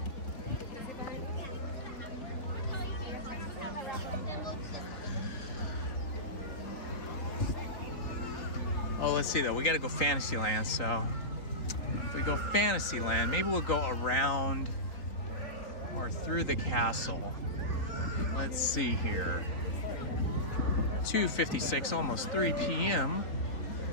Oh, let's see though. We got to go Fantasyland. So if we go Fantasyland, maybe we'll go around or through the castle. Let's see here. 2:56, almost 3 p.m.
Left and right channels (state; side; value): late; right; 3.9 ms